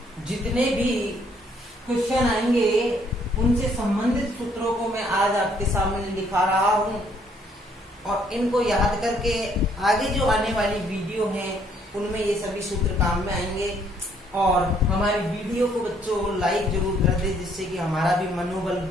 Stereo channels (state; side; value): normal; both; correlation 0.66